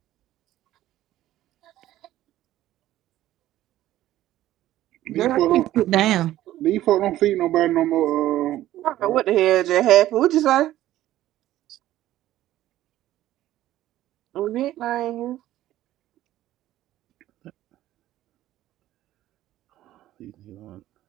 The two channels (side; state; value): left; quieter; 14.1 dB